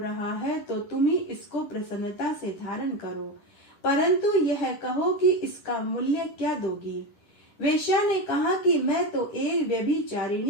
है तो तुम ही इसको प्रसन्नता से धारण करो, परंतु यह कहो कि इसका मूल्य क्या दोगी। वेश्या ने कहा कि मैं तो एक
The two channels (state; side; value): late; right; 10 ms